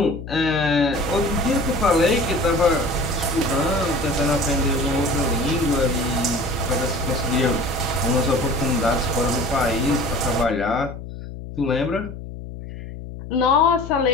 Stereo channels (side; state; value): left; noise; hum, 11 dB below the sound